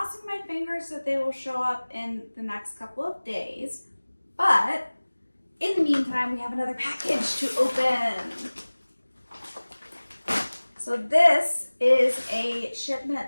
my fingers that they will show up in the next couple of days, but in the meantime, we have another package to open. So this is a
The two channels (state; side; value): inverted; both; correlation -1.00